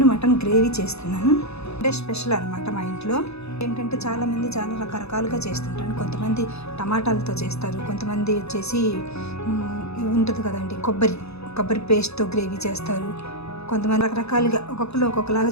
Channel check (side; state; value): right; late; 0.79 ms